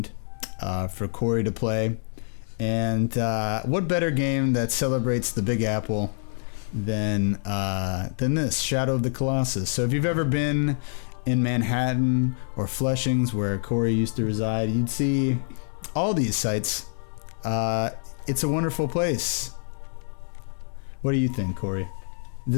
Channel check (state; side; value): silent; right; 61 dB below the other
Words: for Corey to play. And what better game that celebrates the Big Apple than this, Shadow of the Colossus. So if you've ever been in Manhattan or Flushings, where Corey used to reside, you'd see all these sites. It's a wonderful place. What do you think, Corey?